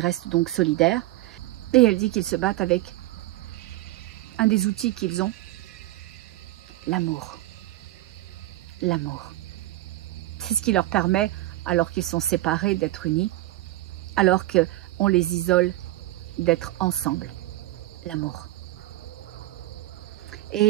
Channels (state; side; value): quieter; left; 16.9 dB